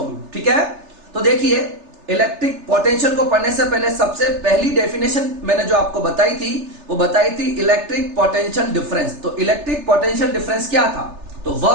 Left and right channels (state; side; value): late; left; 3.3 ms